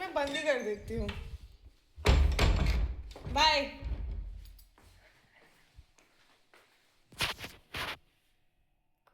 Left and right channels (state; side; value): identical; both; correlation 1.00